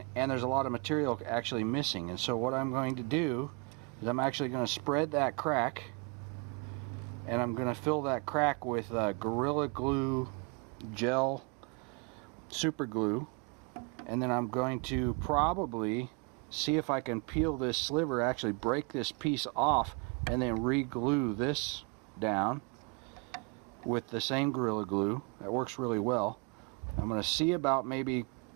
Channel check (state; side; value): quieter; left; 32.4 dB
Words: there's a lot of material actually missing. And so what I'm going to do is I'm actually going to spread that crack, and I'm going to fill that crack with Gorilla Glue gel super glue, and then I'm going to probably see if I can peel this sliver, actually break this piece off, and then re-glue this down with the same Gorilla Glue. That works really well. I'm going to see about maybe